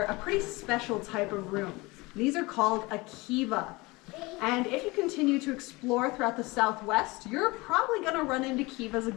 a pretty special type of room. These are called a kiva. And if you continue to explore throughout the Southwest, you're probably going to run into kivas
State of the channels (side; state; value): right; quieter; 23.4 dB